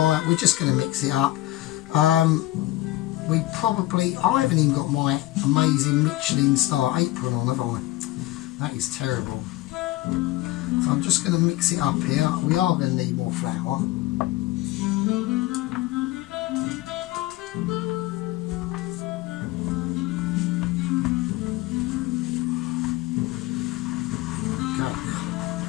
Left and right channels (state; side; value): quieter; right; 17.2 dB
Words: We're just going to mix it up. I haven't even got my amazing Michelin star apron on, have I? That is terrible. So I'm just going to mix it up here. We are going to need more flour.